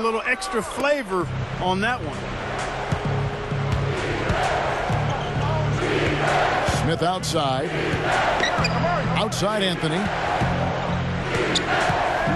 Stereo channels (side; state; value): both; identical; correlation 1.00